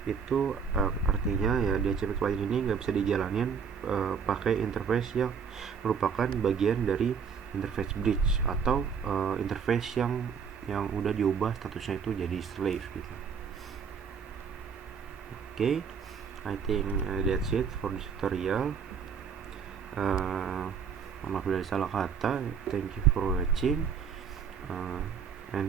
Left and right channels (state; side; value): quieter; left; 6.6 dB